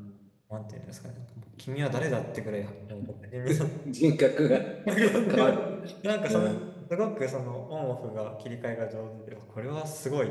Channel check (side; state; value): both; identical; correlation 1.00